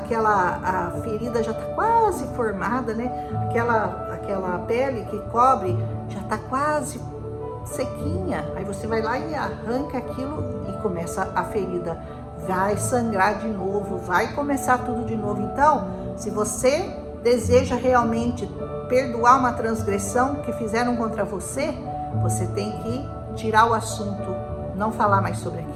ferida, já está quase formada, né? Aquela pele que cobre já está quase sequinha. Aí você vai lá e arranca aquilo e começa a ferida. Vai sangrar de novo, vai começar tudo de novo. Então, se você deseja realmente perdoar uma transgressão que fizeram contra você, você tem que tirar o assunto, não falar mais sobre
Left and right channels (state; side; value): identical; both; correlation 1.00